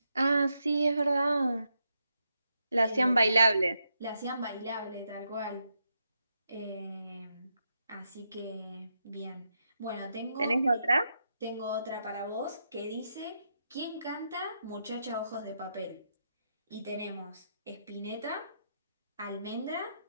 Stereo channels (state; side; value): inverted; both; correlation -0.82